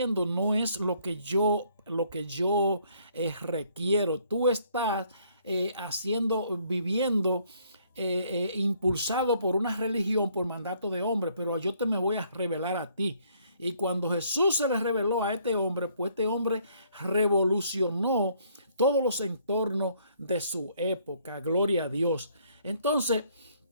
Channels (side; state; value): both; inverted; correlation -0.65